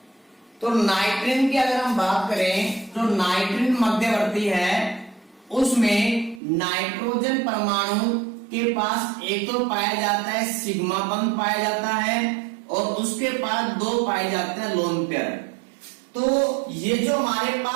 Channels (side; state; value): left; drops out; at 6.4 s